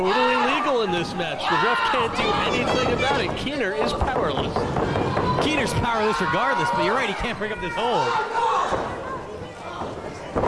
legal in this match. The ref can't do anything about it. Keener is powerless. Keener's powerless regardless, but you're right, he can't break up this hold.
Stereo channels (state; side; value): identical; both; correlation 1.00